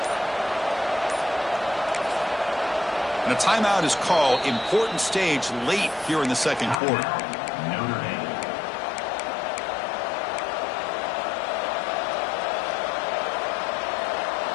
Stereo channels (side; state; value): right; drops out; at 6.8 s